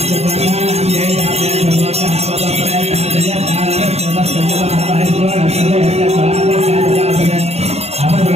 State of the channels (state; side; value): late; left; 0.30 ms